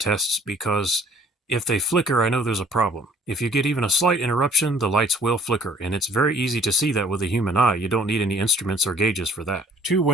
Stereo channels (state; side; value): normal; both; correlation 0.55